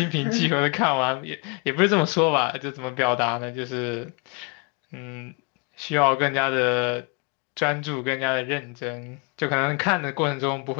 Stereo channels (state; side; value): quieter; right; 32.6 dB